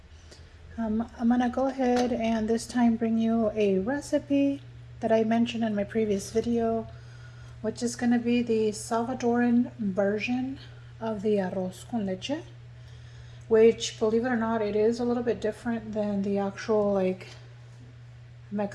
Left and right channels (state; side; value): identical; both; correlation 1.00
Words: I'm gonna go ahead and this time bring you a recipe that I mentioned in my previous video, which is gonna be the Salvadoran version of the arroz con leche, which, believe it or not, it is a little bit different than the actual